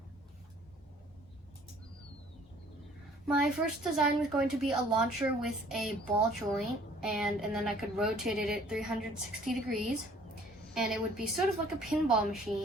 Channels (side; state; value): both; normal; correlation 0.56